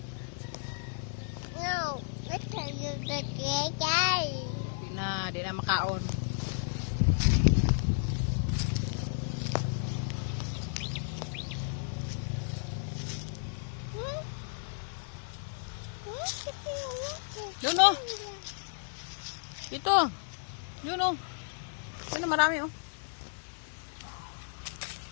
No, let's try the guy. Di na makaon. Yun oh. Dito. Yun oh. Yun oh, marami oh.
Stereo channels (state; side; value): silent; right; digital silence